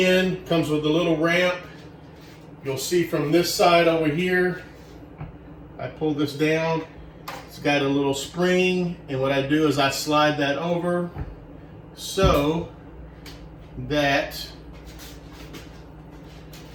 comes with a little ramp. You'll see from this side over here, I pull this down. It's got a little spring, and what I do is I slide that over so that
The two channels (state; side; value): identical; both; correlation 1.00